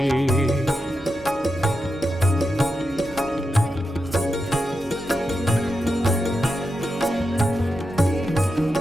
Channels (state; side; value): normal; both; correlation 0.88